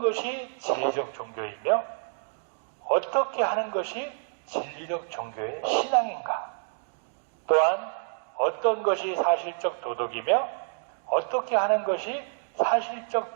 진리적 종교이며 어떻게 하는 것이 진리적 종교의 신앙인가? 또한 어떤 것이 사실적 도덕이며 어떻게 하는 것이 사실적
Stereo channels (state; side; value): silent; left; digital silence